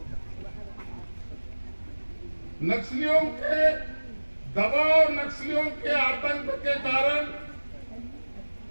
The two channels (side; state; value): both; inverted; correlation -1.00